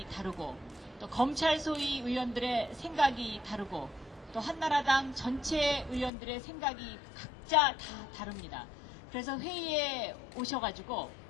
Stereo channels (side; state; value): right; drops out; at 6.1 s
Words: 다르고 또 검찰 소위 의원들의 생각이 다르고 또 한나라당 전체 의원들의 생각이 각자 다 다릅니다. 그래서 회의에 오셔가지고